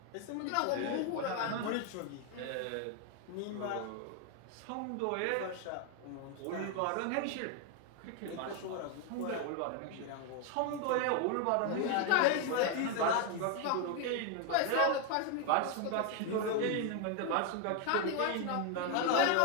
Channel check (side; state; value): both; different; correlation 0.01